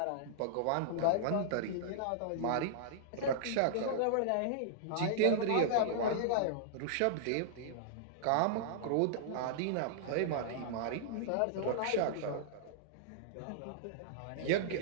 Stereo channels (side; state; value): both; different; correlation -0.02